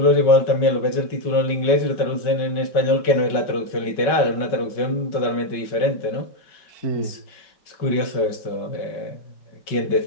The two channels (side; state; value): right; late; 5.3 ms